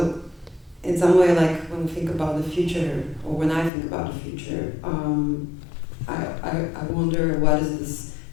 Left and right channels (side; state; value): right; drops out; at 3.7 s